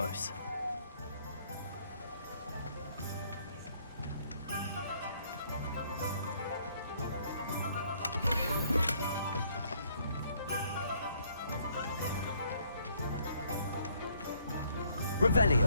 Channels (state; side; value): inverted; both; correlation -0.65